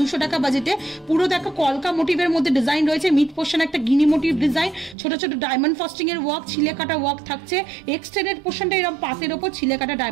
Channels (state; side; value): drops out; left; at 5.0 s